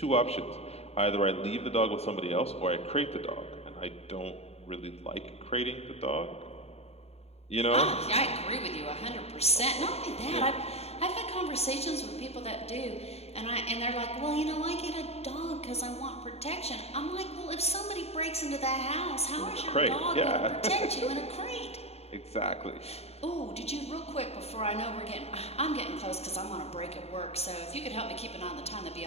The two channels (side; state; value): right; late; 0.30 ms